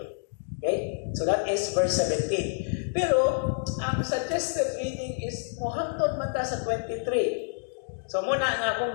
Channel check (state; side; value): silent; right; digital silence